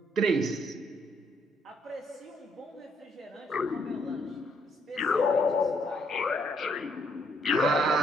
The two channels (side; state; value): both; normal; correlation 0.71